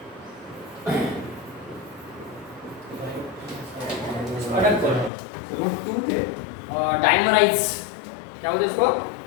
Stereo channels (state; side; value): drops out; right; at 5.1 s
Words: डाइमराइज क्या होता है इसको